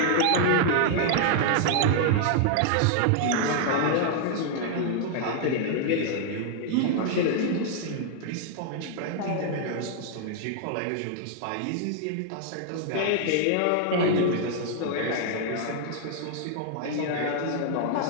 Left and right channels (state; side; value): different; both; correlation 0.00